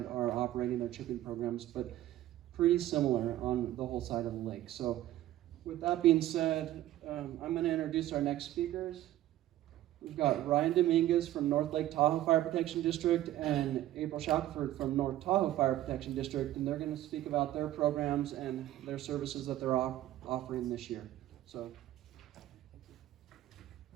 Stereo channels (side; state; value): left; quieter; 14.2 dB